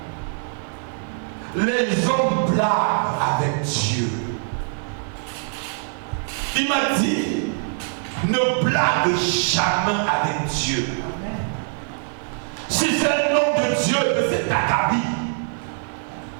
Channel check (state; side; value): silent; left; digital silence